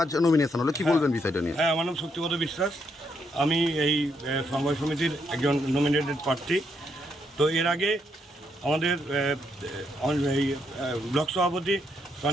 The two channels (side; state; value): both; normal; correlation 0.76